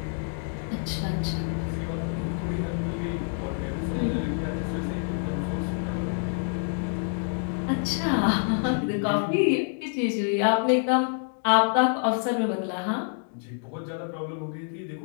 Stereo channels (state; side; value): silent; right; 60 dB below the other